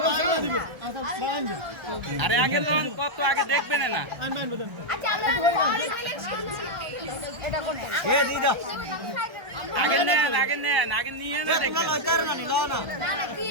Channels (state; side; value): late; left; 1.3 ms